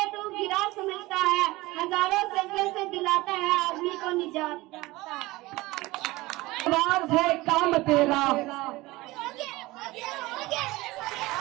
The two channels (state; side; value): quieter; left; 20.2 dB